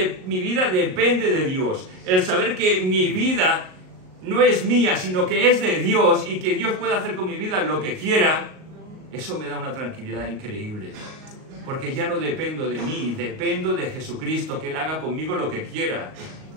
mi vida depende de Dios, el saber que mi vida no es mía, sino que es de Dios y que Dios puede hacer con mi vida lo que quiera, eso me da una tranquilidad increíble. Porque ya no dependo de mí, dependo de Jesucristo, que Él haga conmigo lo que quiera.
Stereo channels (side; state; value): left; late; 38 ms